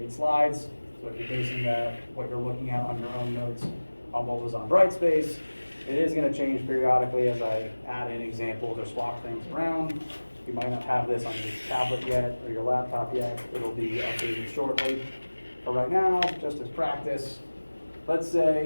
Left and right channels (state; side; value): inverted; both; correlation -1.00